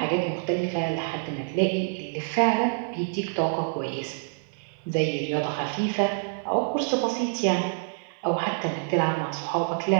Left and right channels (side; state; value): left; silent; digital silence